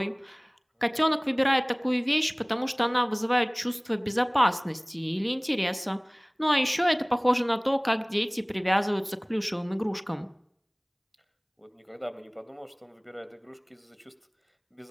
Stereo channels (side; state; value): both; identical; correlation 1.00